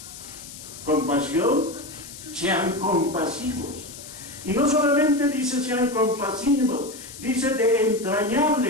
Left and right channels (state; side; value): noise; left; hiss, 14 dB below the sound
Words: Compasión, sean compasivos. Y no solamente dice sean compasivos, dice de